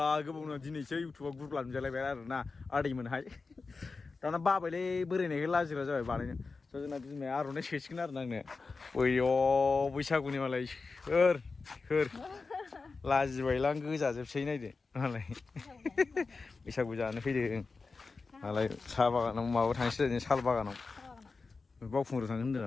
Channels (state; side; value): quieter; right; 4.2 dB